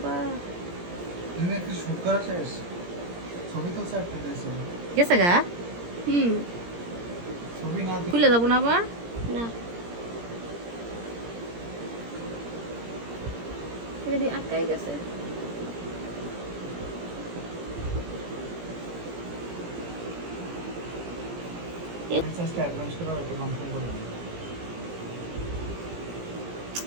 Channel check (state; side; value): late; left; 17 ms